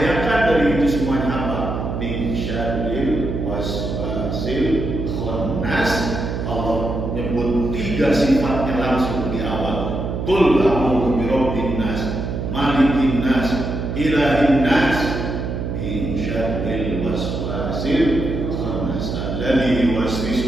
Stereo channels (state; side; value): noise; right; hum, 3 dB below the sound